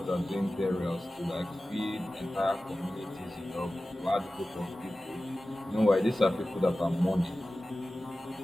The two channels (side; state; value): both; normal; correlation 0.96